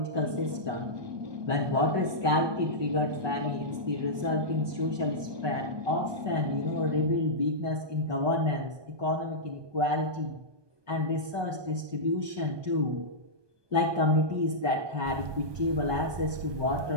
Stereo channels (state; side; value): late; left; 1.2 ms